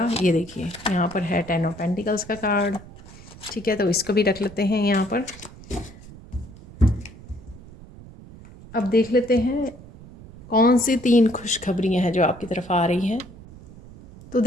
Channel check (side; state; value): right; noise; rumble, 19 dB below the sound